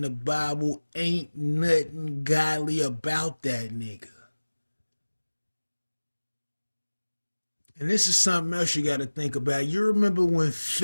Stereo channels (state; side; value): inverted; both; correlation -1.00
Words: the Bible, ain't nothing godly about that nigga. And this is something else you got to think about. You remember when